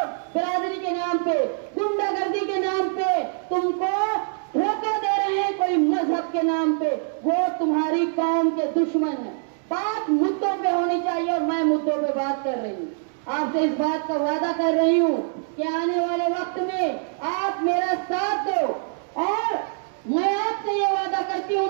बिरादरी के नाम पे, गुंडागर्दी के नाम पे तुमको धोखा दे रहे हैं, कोई मजहब के नाम पे, वो तुम्हारी कौम के दुश्मन है। बात मुद्दों पे होनी चाहिए और मैं मुद्दों पे बात कर रही हूँ। आपसे इस बात का वादा कर रही हूँ कि आने वाले वक्त में आप मेरा साथ दो। और मैं आपसे ये वादा करती हूँ,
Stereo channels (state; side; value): silent; left; 62 dB below the other